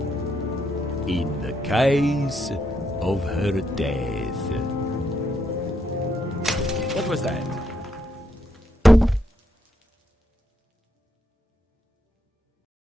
in the case of her death. What was that?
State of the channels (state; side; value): normal; both; correlation 0.78